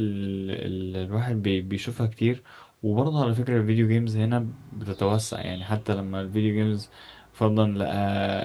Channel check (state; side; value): identical; both; correlation 1.00